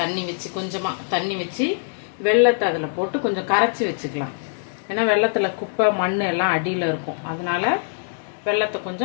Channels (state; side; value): silent; right; digital silence